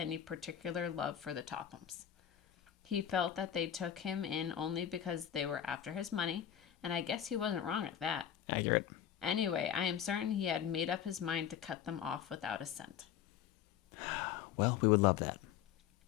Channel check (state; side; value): quieter; right; 9.9 dB